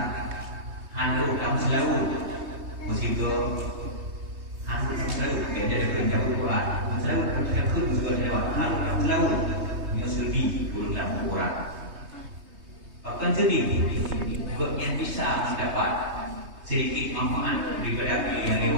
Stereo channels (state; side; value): late; left; 3.2 ms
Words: Anu kamu selalu musibah. Anu selalu beda dengan jauh Quran. Selalu terkait juga lewat. Anu selalu menyusuri dalam Quran. Bahkan sedih, yang bisa mendapat sedikit manfaat daripada yang